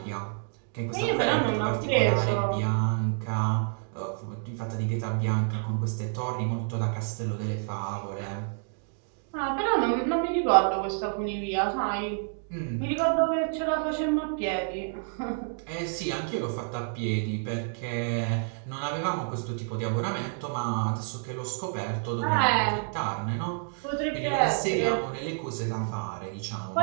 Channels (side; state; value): left; silent; 59 dB below the other